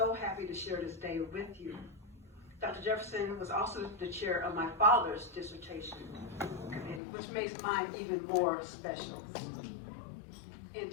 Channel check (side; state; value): right; drops out; at 7.0 s